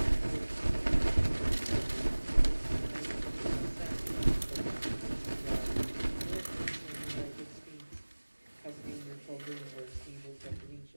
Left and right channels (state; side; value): inverted; both; correlation -1.00